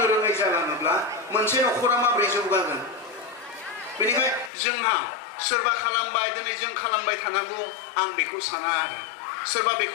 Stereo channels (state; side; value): drops out; right; at 4.5 s